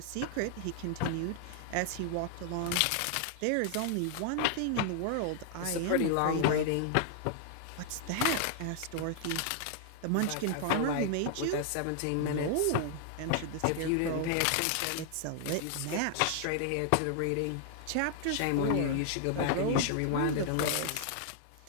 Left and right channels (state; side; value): different; both; correlation 0.00